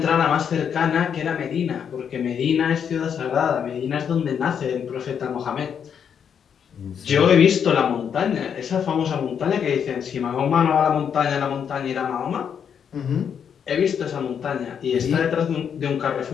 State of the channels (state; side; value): quieter; right; 7.7 dB